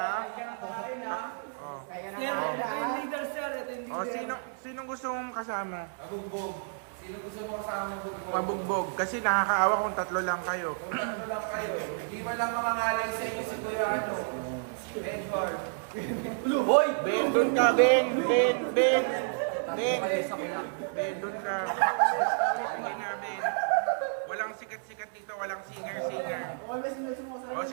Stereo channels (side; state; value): left; silent; digital silence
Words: Sir, ito yung leader, sir. Ito yung leader. Sinong gusto mong kasama? Mabugbog. Sino gusto mo kasama mabugbog? Mabugbog. Kasi nakakaawa kung tatlo lang kayo. Tatlo lang kayo. Hindi man lang mangangalay sa inyo si Kuya Edward. Hoy! Ben, doon ka, Ben, doon ka. Hindi nga, Ben. Walang sikat-sikat dito, walang singer-singer.